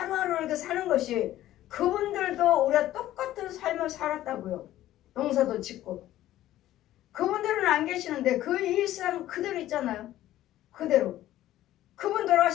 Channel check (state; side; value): quieter; right; 14.0 dB